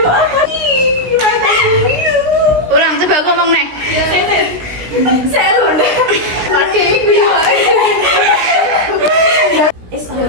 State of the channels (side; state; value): left; late; 17 ms